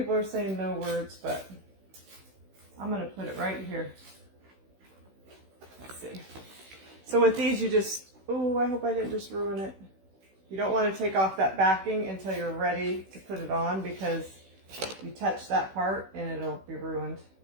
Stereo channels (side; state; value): left; late; 16 ms